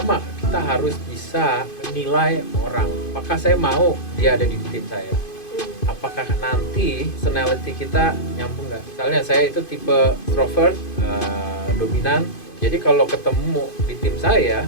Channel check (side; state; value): right; late; 2.5 ms